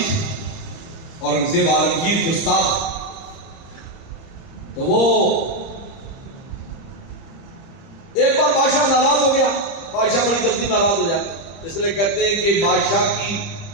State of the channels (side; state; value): right; late; 30 ms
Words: اورنگزیب عالمگیر کے استاد۔ تو وہ ایک بار بادشاہ ناراض ہو گیا، بادشاہ بڑی جلدی ناراض ہو جاتا، اس لیے کہتے ہیں کہ بادشاہ